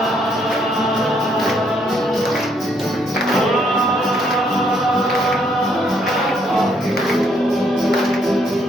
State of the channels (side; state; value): both; normal; correlation 0.70